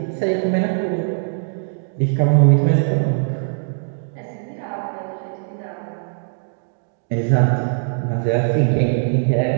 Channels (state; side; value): silent; left; digital silence